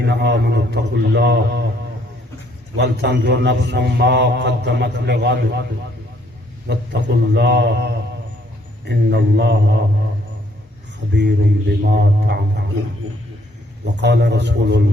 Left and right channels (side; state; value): both; normal; correlation 0.65